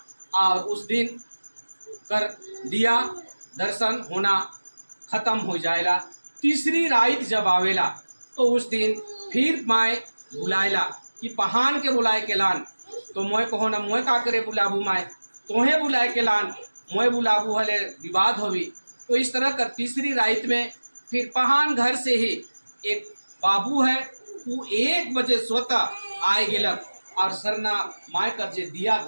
और उस दिन कर दिया दर्शन होना खत्म हो जाएला। तीसरी रात जब आवेला तो उस दिन फिर माए बुलाएला कि पहान के बुलाए के लान। तो मोए कहो ना मोए का करे बुलाबू माए, तोहे बुलाए के लान मोए बुलाबू हले विवाद होवी। तो इस तरह कर तीसरी रात में फिर पहान घर से ही एक बाबू है वो 1 बजे स्वतः आए गेलक और सरना माए कर जे दिया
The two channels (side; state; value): both; inverted; correlation -1.00